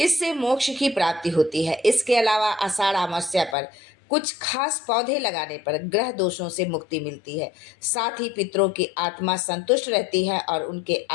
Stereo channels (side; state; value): right; drops out; at 3.6 s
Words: मोक्ष की प्राप्ति होती है। इसके अलावा आषाढ़ अमावस्या पर कुछ खास पौधे लगाने पर ग्रह दोषों से मुक्ति मिलती है। साथ ही पितरों की आत्मा संतुष्ट रहती है और उनके